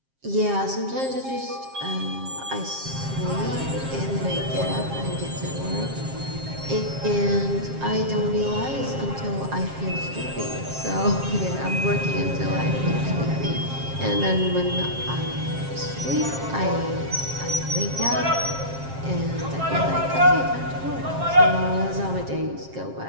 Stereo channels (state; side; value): late; left; 7.5 ms